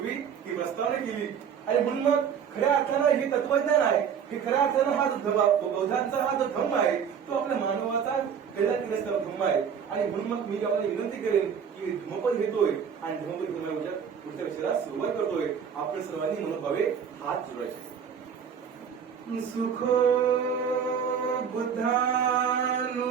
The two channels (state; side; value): quieter; left; 7.5 dB